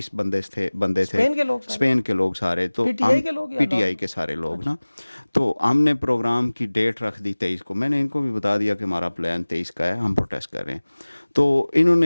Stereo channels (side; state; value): both; inverted; correlation -1.00